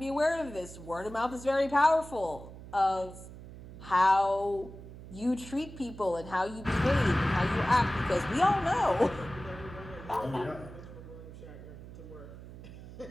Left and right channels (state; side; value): noise; right; hum, 15 dB below the sound